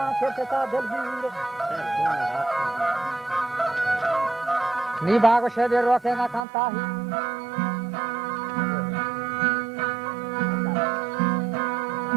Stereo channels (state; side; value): drops out; left; at 6.5 s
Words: شفتا دلبیر نی باغ شدی روکه نکانتاهی